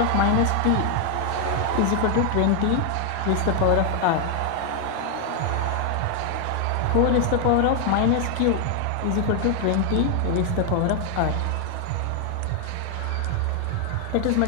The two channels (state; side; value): different; both; correlation 0.00